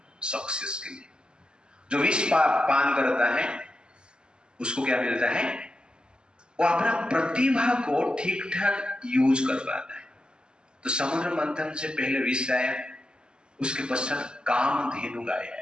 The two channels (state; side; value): late; left; 0.048 ms